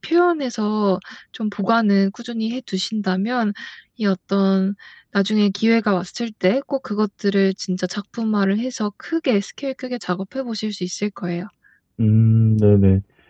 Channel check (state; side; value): identical; both; correlation 1.00